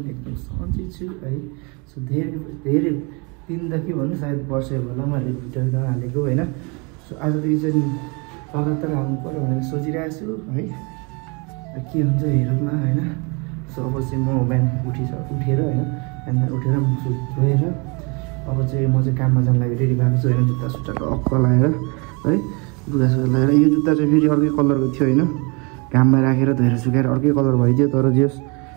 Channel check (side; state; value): left; quieter; 31.2 dB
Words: सन्चै छु है। सो धेरै दिनदेखि भन्नु सायद वर्षै होला मैले भिडियो हालेको होइन। सो आजदेखि चाहिँ लगातार हाल्नु पऱ्यो भनेर सोचिरहेको छु है, के हुन्छ हेरौँला होइन। सो अब चाहिँ म बिहान उठेर होइन, बिहान उठेर मुख धोएर अब चाहिँ म चाहिँ काममा जानु लागि रेडी भएको छु होइन। जुत्ता सुत्ता टक्क लगाएर है, लुगासुगा लगाएर। यो जुत्ता चाहिँ फेरि अर्कै कलरको थियो होइन, घाममा राखेर धोएर सुकाएर अर्कै कलर भइदियो, तर जेस